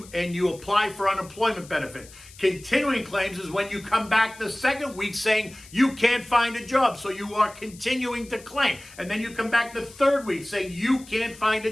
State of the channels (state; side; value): noise; left; hiss, 20 dB below the sound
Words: apply for unemployment benefits. Continuing claims is when you come back the second week saying you can't find a job, so you are continuing to claim. And then you come back the third week saying you can't find a